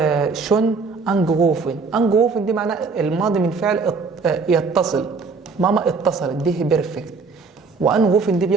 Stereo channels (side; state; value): left; quieter; 4.6 dB